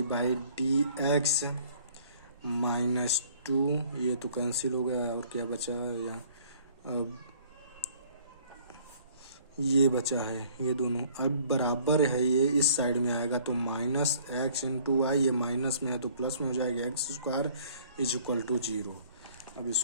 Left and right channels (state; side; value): inverted; both; correlation -0.56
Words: by d x -2, ये तो कैंसिल हो गया और क्या बचा यहाँ, अब ये बचा है, ये दोनों अब बराबर है, ये इस साइड में आएगा तो -x इंटू वाई, ये माइनस में है तो प्लस में हो जाएगा, x square is equal to 0। अब